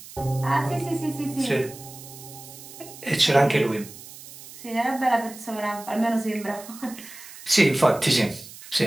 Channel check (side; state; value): right; noise; hiss, 16 dB below the sound